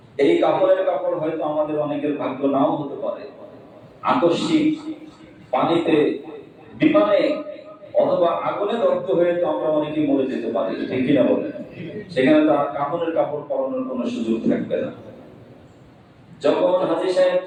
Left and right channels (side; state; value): both; identical; correlation 1.00